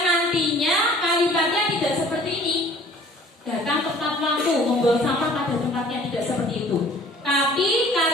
nantinya kalimatnya tidak seperti ini. Datang tepat waktu, membuang sampah pada tempatnya, tidak seperti itu. Tapi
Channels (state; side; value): normal; both; correlation 0.51